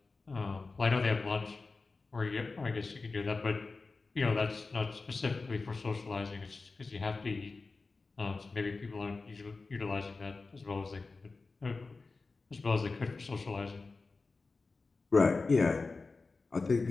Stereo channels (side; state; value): right; quieter; 3.9 dB